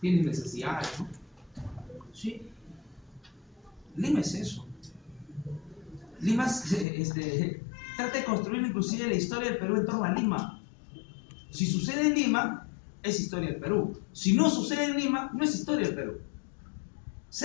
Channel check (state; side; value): drops out; right; at 6.9 s